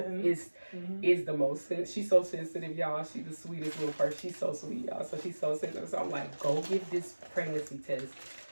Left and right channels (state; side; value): inverted; both; correlation -1.00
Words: is the most. She's so sensitive, y'all. She's the sweetest little person. She's so sweet, y'all. So she's so sensitive. So I'm like, go give this pregnancy test